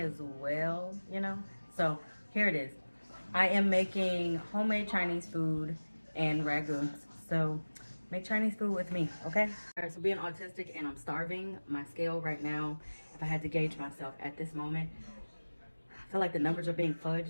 well, you know. So here it is. I am making homemade Chinese food and ragoons. So make Chinese food with me, okay? All right, so being autistic and I'm starving, my scale right now, if I had to gauge myself at this moment, I feel like the numbers are being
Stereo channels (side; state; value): both; inverted; correlation -1.00